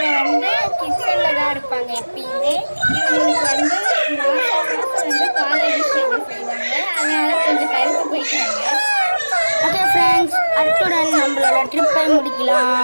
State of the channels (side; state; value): both; inverted; correlation -1.00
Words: கிச்சனில் தான் இருப்பாங்க எப்பயுமே. இவங்களுக்கு மாதம் பால் அபிஷேகம் செய்வாங்க. அதனால கொஞ்சம் கருத்து போயிட்டாங்க. ஓகே ஃப்ரெண்ட்ஸ், அத்துடன் நம்மளோட ட்ரிப்பை